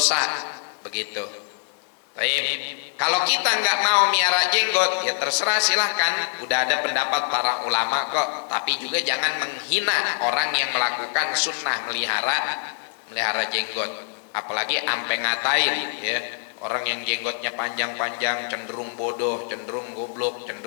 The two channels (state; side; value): silent; right; 62 dB below the other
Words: begitu. Kalau kita nggak mau miara jenggot, ya terserah, silahkan. Udah ada pendapat para ulama kok. Tapi juga jangan menghina orang yang melakukan sunnah melihara jenggot. Apalagi ampe ngatain, ya, orang yang jenggotnya panjang-panjang cenderung bodoh, cenderung goblok,